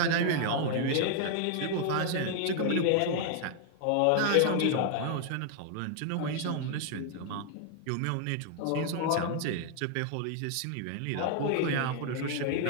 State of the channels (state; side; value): different; both; correlation 0.00